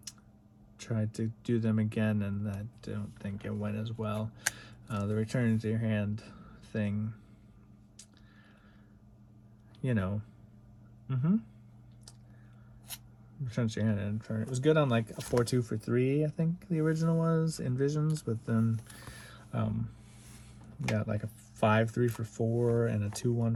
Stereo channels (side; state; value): both; identical; correlation 1.00